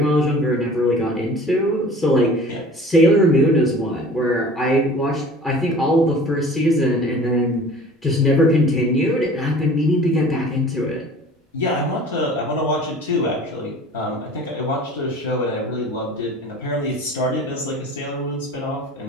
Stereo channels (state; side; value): normal; both; correlation 0.44